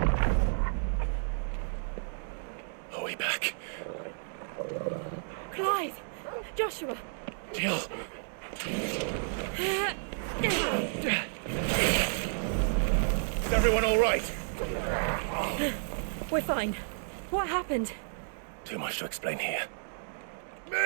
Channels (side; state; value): left; silent; digital silence